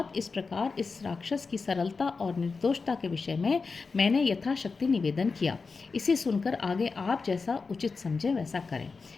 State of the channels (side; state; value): right; quieter; 4.5 dB